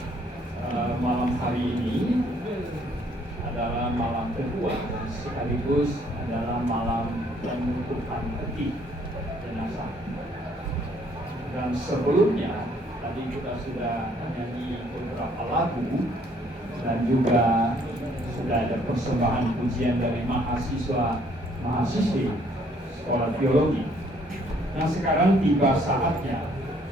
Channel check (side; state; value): both; normal; correlation 0.64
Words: Malam hari ini adalah malam kedua dan sekaligus adalah malam penutupan peti jenazah. Dan sebelumnya tadi kita sudah menyanyi beberapa lagu dan juga sudah ada persembahan pujian dari mahasiswi sekolah teologi. Nah, sekarang tiba saatnya